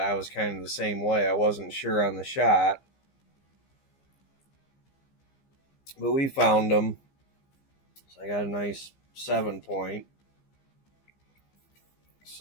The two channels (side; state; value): right; late; 15 ms